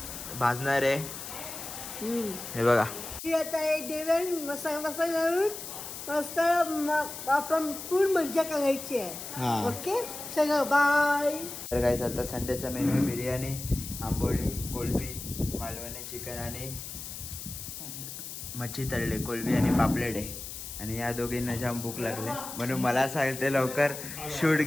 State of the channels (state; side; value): noise; left; hiss, 9 dB below the sound